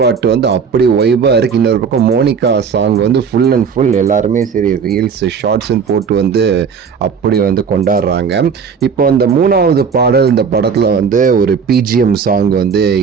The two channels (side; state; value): left; quieter; 6.2 dB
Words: பாட்டு வந்து அப்படி வைபாக இருக்குது. இன்னொரு பக்கம் மோனிகா சாங் வந்து ஃபுல் அண்ட் ஃபுல் எல்லாருமே சரி ரீல்ஸ் ஷார்ட்ஸ்ன்னு போட்டு வந்து அப்படி வந்து கொண்டாடுறாங்க. இப்போ அந்த 3வது பாடல் இந்த படத்தில் வந்து ஒரு பிஜிஎம் சாங் வந்து